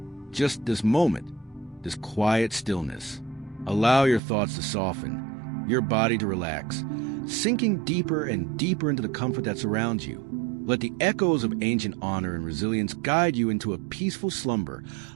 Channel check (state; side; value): drops out; left; at 4.2 s